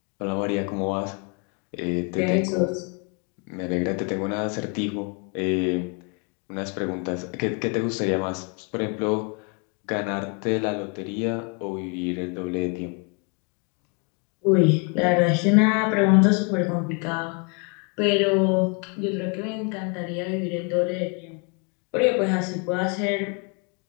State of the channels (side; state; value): right; quieter; 35.2 dB